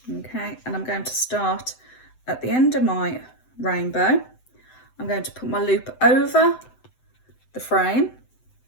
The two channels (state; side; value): late; right; 7.8 ms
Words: Okay, and I'm going to start at the end of my rainbow. I'm going to put my loop over the frame.